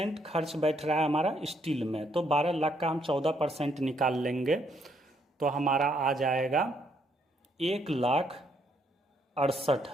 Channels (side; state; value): both; normal; correlation 0.72